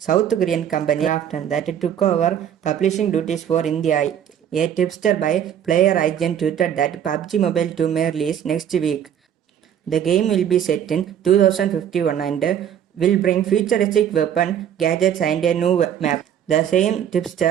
Korean company Krafton that took over publishing duties for India. A tipster by Player Agent tweeted that PUBG Mobile 2 may release next week. The game will be set in 2051 and will bring futuristic weapon, gadgets and a new map. The same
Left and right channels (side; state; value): left; quieter; 9.4 dB